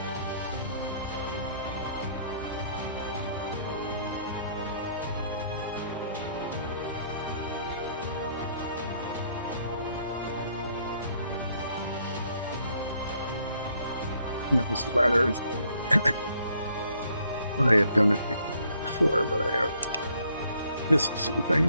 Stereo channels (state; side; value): inverted; both; correlation -0.67